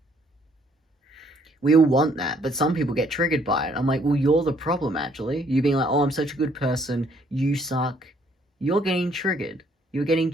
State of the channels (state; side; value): normal; both; correlation 0.65